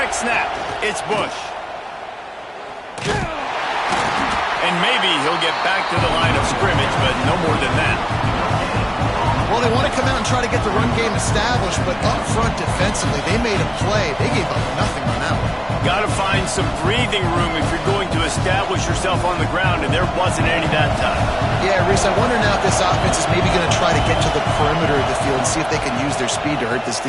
snap, it's Bush. And maybe he'll get back to the line of scrimmage, but no more than that. Well, they want to come out and try to get the run game established, but up front defensively, they made a play. They gave up nothing on that one. Got to find some breathing room if you're going to establish yourself on the ground, and there wasn't any that time. Yeah, Reese, I wonder now if this offense is maybe going to try to get to the perimeter of the field and see if they can use their speed to hurt this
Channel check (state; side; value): identical; both; correlation 1.00